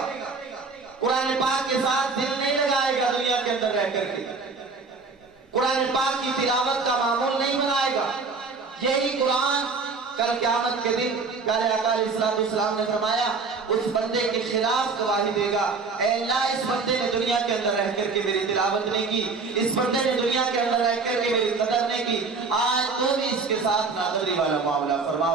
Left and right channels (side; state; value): left; quieter; 4.4 dB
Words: قرآن پاک کے ساتھ دل نہیں لگائے گا دنیا کے اندر رہ کر کے، قرآن پاک کی تلاوت کا معمول نہیں بنائے گا، یہی قرآن کل قیامت کے دن پیارے آقا علیہ السلام نے فرمایا اس بندے کے خلاف گواہی دے گا، اے اللہ اس بندے نے دنیا کے اندر رہ کر کے میری تلاوت نہیں کی، اس بندے نے دنیا کے اندر رہ کر کے میری قدر نہیں کی، آج تو بھی اس کے ساتھ ناقدری والا معاملہ فرما